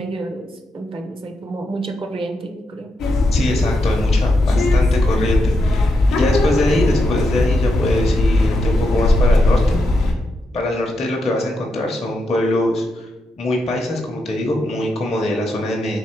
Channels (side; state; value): both; normal; correlation 0.84